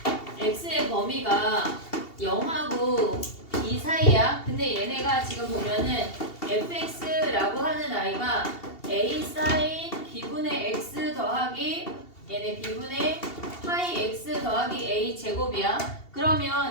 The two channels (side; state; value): right; late; 2.7 ms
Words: X의 범위가 0하고 B 사이야. 근데 얘네가 지금 보면은 fx라고 하는 아이가 A 사인 B분의 X 더하기 얘네 B분의 파이 X 더하기 A 제곱이야.